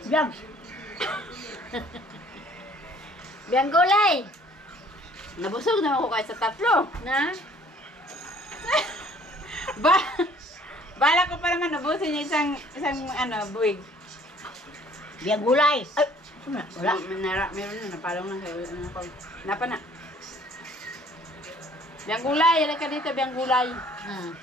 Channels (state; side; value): normal; both; correlation 0.56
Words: biyag Biyang gulay! Nabusog na ako kahit sa tatlo. Na? Bala ko pa naman nabusin yung isang buwig. biyag gulay ay wala Meron na, napalong lang kayo. Napa na. Biyang gulay, halika ka dito, biyang gulay.